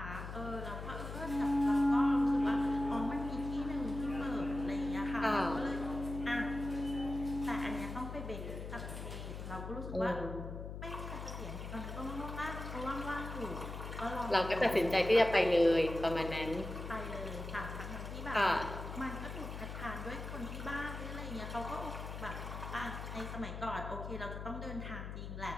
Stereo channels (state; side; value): noise; left; hum, 7 dB below the sound